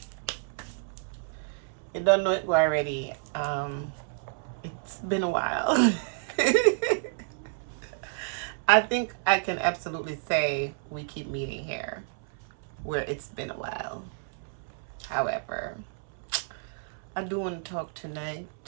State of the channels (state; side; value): silent; left; 58 dB below the other